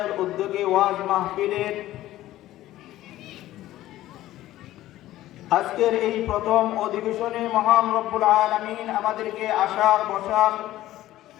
উদ্যোগে ওয়াজ মাহফিলের আজকের এই প্রথম অধিবেশনে মহান রব্বুল আলামিন আমাদেরকে আসার বসার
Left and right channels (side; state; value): right; quieter; 14.9 dB